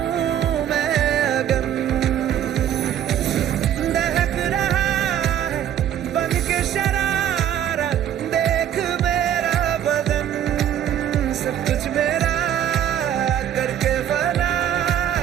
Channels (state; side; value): quieter; left; 10.3 dB